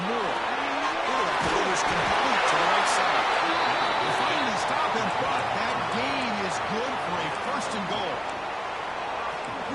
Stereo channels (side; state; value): both; identical; correlation 1.00